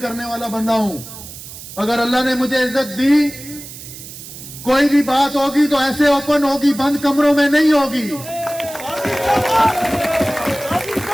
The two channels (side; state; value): right; noise; hiss, 14 dB below the sound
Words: वाला बंदा हूं। अगर अल्लाह ने मुझे इज्जत दी, कोई भी बात होगी तो ऐसे ओपन होगी, बंद कमरों में नहीं होगी।